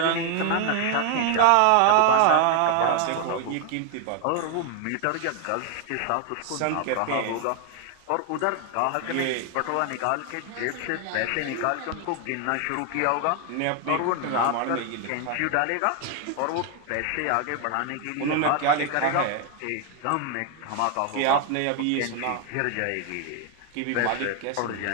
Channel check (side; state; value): both; different; correlation 0.01